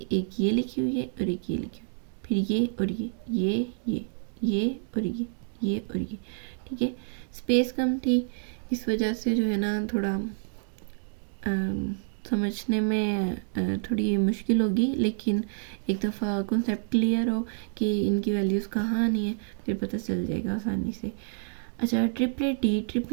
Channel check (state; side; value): silent; left; digital silence